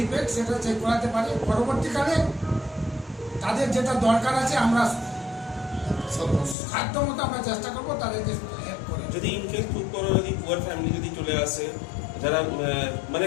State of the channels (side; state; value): right; drops out; at 6.6 s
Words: সেটা চেক করাতে পারে। পরবর্তীকালে তাদের যেটা দরকার আছে আমরা সাধ্য মতো আমরা চেষ্টা করবো তাদেরকে হেল্প করে। যদি ইনকেস খুব বড় যদি পুয়ার ফ্যামিলি যদি চলে আসে, যারা মানে